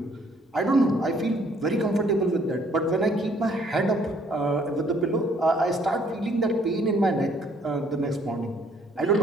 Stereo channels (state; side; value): normal; both; correlation 0.63